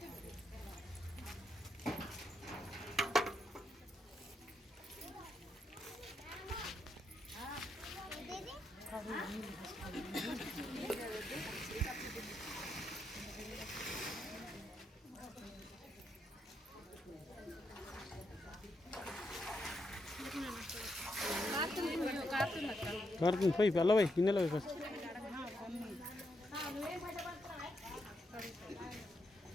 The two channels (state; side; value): normal; both; correlation 0.81